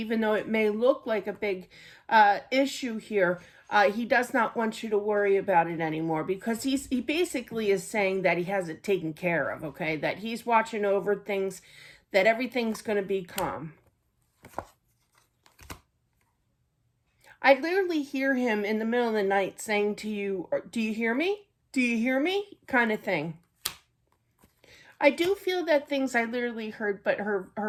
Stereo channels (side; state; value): both; identical; correlation 1.00